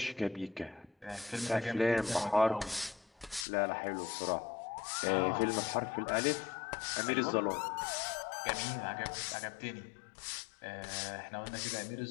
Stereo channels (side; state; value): right; drops out; at 3.5 s